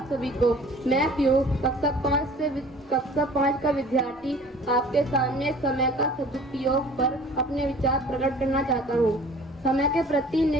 सभी को। मैं पीयूष कक्षा 5 का विद्यार्थी आपके सामने समय का सदुपयोग पर अपने विचार प्रकट करना चाहता हूँ। समय के प्रति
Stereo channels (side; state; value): both; normal; correlation 0.48